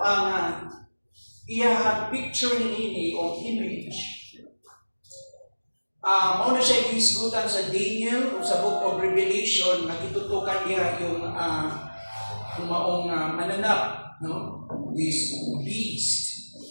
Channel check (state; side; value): inverted; both; correlation -1.00